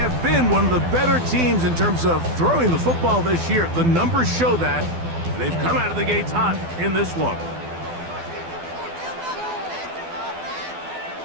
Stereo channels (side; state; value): left; late; 12 ms